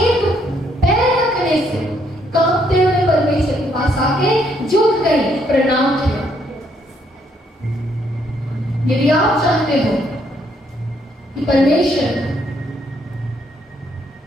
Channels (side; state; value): both; normal; correlation 0.71